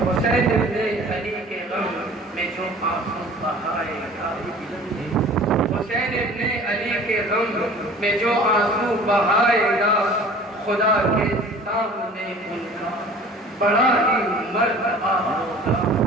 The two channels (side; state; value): both; normal; correlation 0.46